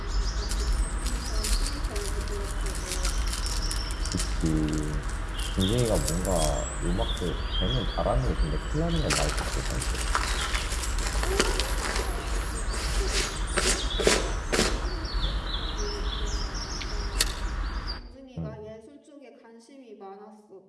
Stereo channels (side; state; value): both; identical; correlation 1.00